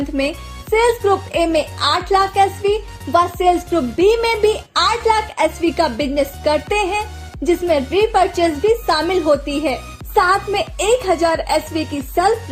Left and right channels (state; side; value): identical; both; correlation 1.00